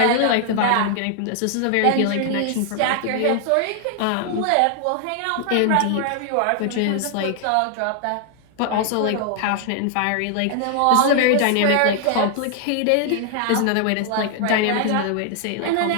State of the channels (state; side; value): different; both; correlation 0.00